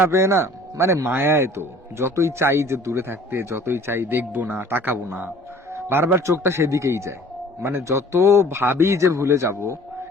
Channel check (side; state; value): both; normal; correlation 0.51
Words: পেয়ে না, মানে মায়ায় তো যতই চাই যে দূরে থাকতে, যতই চাই দেখবো না, তাকাবো না, বারবার চোখটা সেদিকেই যায়। মানে যত ভাবি যে ভুলে যাব,